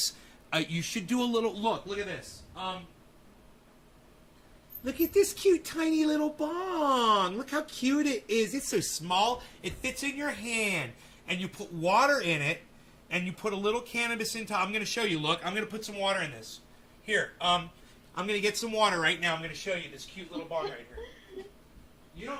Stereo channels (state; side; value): identical; both; correlation 1.00